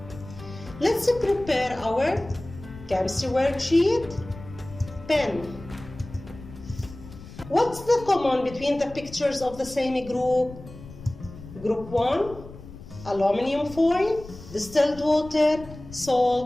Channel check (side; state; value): left; noise; rumble, 16 dB below the sound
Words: Let's prepare our chemistry worksheet. Pen. What's the common between the pictures of the same group? Group 1, aluminum foil, distilled water,